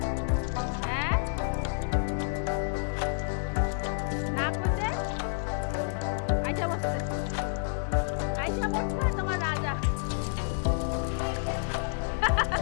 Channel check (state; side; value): silent; right; digital silence